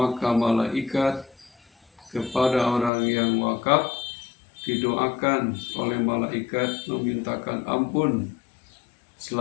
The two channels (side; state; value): right; drops out; at 2.9 s